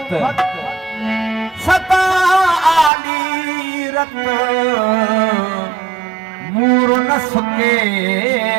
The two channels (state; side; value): drops out; left; at 2.9 s